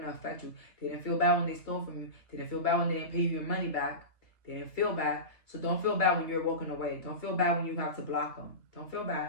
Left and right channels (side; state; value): right; late; 2.4 ms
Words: to affect you. They didn't feel bad when they stole from you. They didn't feel bad when they didn't pay you your money back. They didn't feel bad. So don't feel bad when you're walking away. Don't feel bad when you have to block them. Don't feel